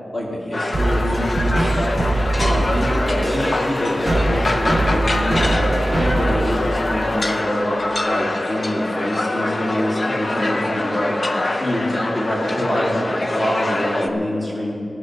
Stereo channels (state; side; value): normal; both; correlation 0.95